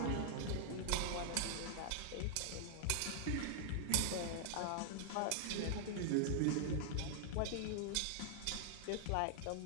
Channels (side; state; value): both; different; correlation -0.01